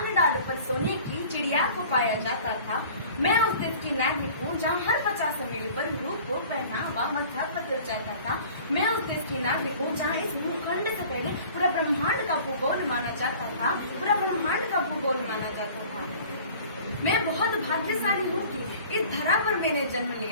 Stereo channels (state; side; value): inverted; both; correlation -0.46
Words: डाल पर सोने की चिड़िया को पाया जाता था। मैं उस देश की नागरिक हूँ जहाँ हर 50 मील पर रूप को पहनावा मध्य पत्र जाता था। मैं उस देश की नागरिक हूँ जहाँ इस भूखंड से पहले पूरा ब्रह्मांड का भूगोल माना जाता था। पूरा ब्रह्मांड का भूगोल माना जाता था। मैं बहुत भाग्यशाली हूँ कि इस धरा पर मैंने जन्म